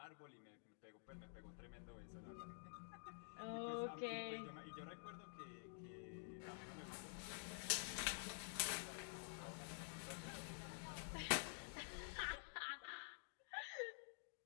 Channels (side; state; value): right; silent; digital silence